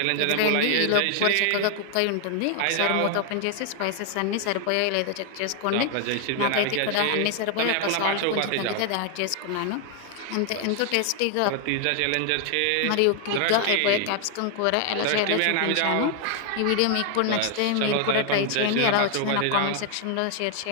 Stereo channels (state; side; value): different; both; correlation 0.00